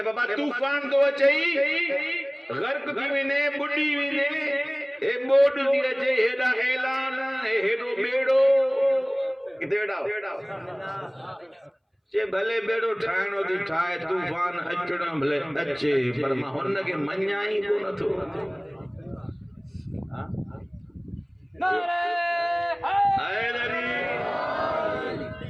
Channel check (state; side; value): identical; both; correlation 1.00